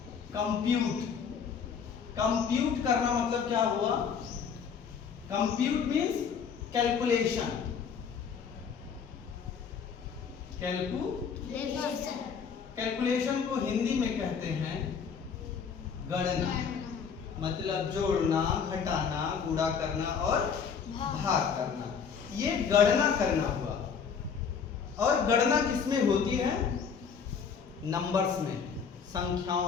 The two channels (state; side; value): quieter; right; 6.6 dB